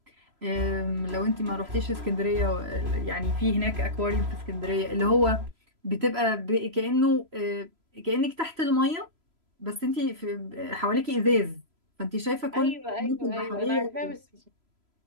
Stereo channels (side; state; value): left; late; 3.0 ms